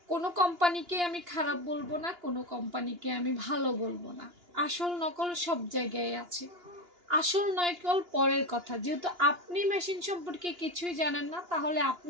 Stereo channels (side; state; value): left; late; 2.9 ms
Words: কোনো কোম্পানিকে আমি খারাপ বলবো না, কোনো কোম্পানিকে আমি ভালো বলবো না। আসল নকল সব জায়গায় আছে। আসল নকল পরের কথা। যেহেতু আপনি মেশিন সম্পর্কে কিছুই জানেন না, তাহলে